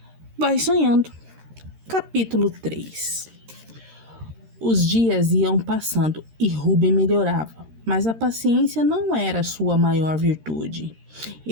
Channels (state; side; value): late; left; 13 ms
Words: Vai Sonhando, capítulo 3. Os dias iam passando e Ruben melhorava, mas a paciência não era sua maior virtude.